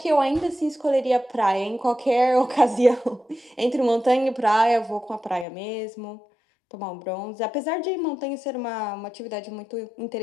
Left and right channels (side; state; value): right; drops out; at 5.5 s